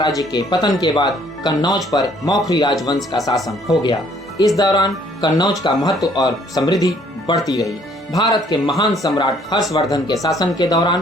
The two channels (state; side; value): normal; both; correlation 0.62